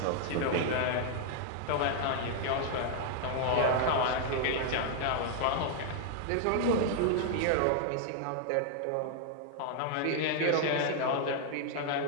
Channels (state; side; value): different; both; correlation 0.00